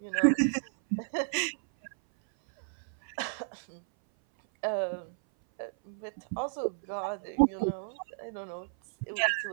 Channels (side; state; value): left; silent; 56 dB below the other